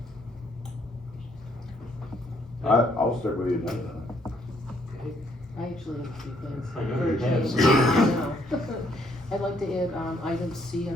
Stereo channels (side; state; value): both; normal; correlation 0.69